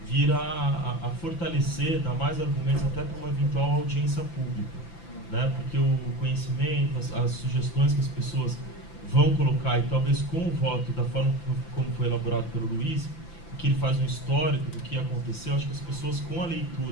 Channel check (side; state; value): right; late; 5.9 ms